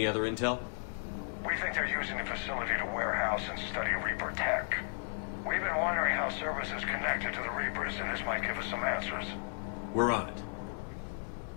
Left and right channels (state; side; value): silent; right; digital silence